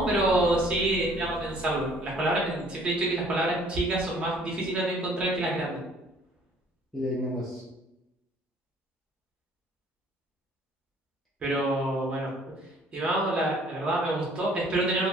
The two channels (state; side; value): normal; both; correlation 0.57